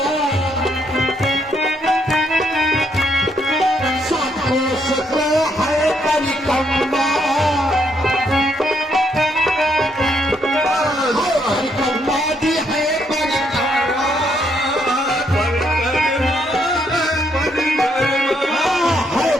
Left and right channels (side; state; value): both; normal; correlation 0.73